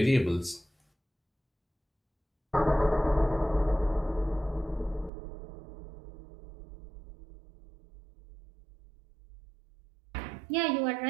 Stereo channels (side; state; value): left; drops out; at 5.1 s